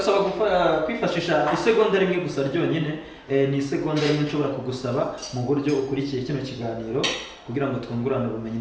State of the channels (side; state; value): both; identical; correlation 1.00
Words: kwifashisha isegonda rimwe gusa ryonyine. Ni isegonda rimwe nshobora kugusaba mu buryo ukurikiye kino kiganiro, kugira ngo twungurane ubumenyi